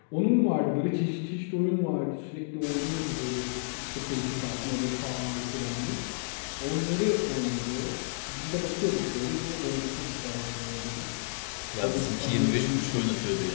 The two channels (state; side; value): silent; right; digital silence